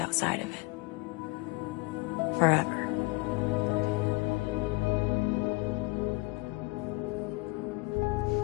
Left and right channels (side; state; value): right; quieter; 25.1 dB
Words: of it. Forever.